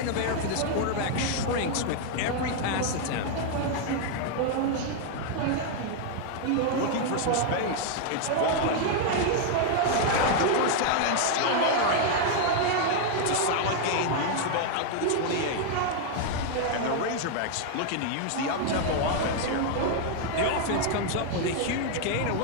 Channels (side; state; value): both; different; correlation 0.00